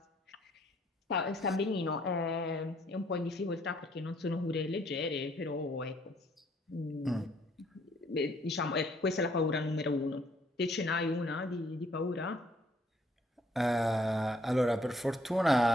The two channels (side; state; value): both; normal; correlation 0.65